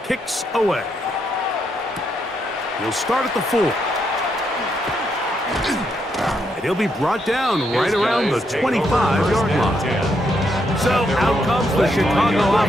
away. He'll start at the 4. And he'll be brought down right around the 25-yard line. So out comes the Chicago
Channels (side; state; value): both; normal; correlation 0.78